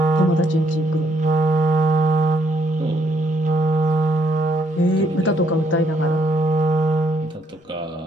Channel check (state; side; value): normal; both; correlation 0.71